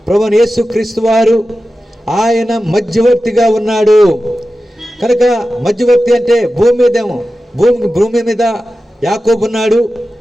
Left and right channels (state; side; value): normal; both; correlation 0.93